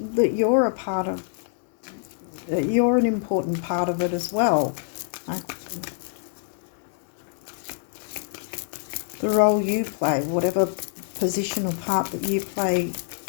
that you're a part of, you're an important part of it as well. The role you play, whatever position or part that you play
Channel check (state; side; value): silent; right; digital silence